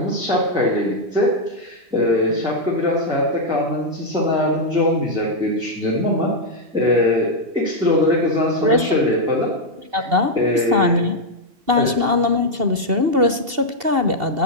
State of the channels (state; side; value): late; left; 2.7 ms